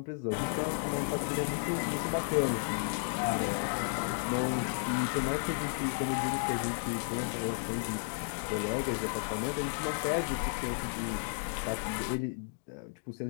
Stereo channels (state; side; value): silent; right; digital silence